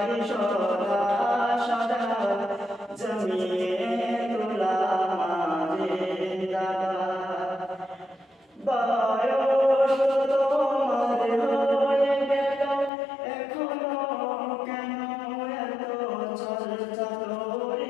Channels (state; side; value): drops out; right; at 12.9 s